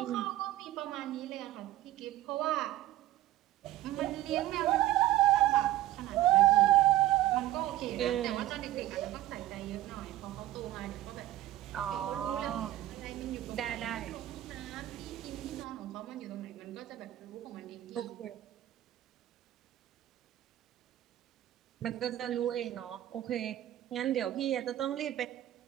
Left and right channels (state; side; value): quieter; left; 14.6 dB